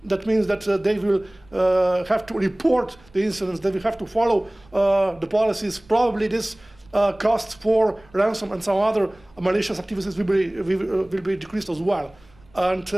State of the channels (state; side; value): noise; right; rumble, 28 dB below the sound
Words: that means that they will have to report the incidents, they will have to follow the policies. Probably this costs for ransom and some other malicious activities will be decreased as well. And